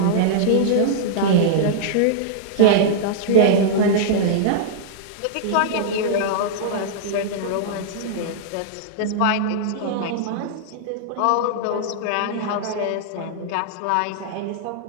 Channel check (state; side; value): different; both; correlation -0.02